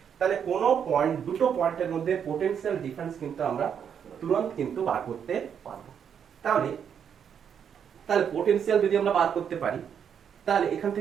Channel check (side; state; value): left; quieter; 7.9 dB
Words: তাহলে কোন পয়েন্ট, দুটো পয়েন্টের মধ্যে পোটেনশিয়াল ডিফারেন্স কিন্তু আমরা তুরন্ত কিন্তু বার করতে পারবো। তাহলে পোটেনশিয়াল যদি আমরা বার করতে পারি তাহলে এখান